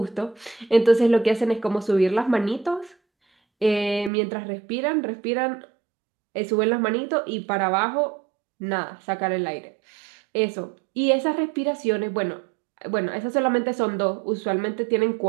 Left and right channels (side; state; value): left; drops out; at 4.1 s